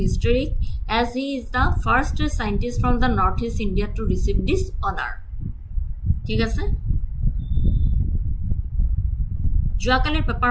as he is the first scientist from the northeast India to receive this honor. ঠিক আছে। যোৱাকালিৰ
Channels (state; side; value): identical; both; correlation 1.00